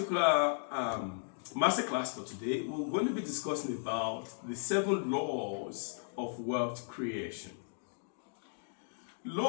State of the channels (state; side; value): silent; right; digital silence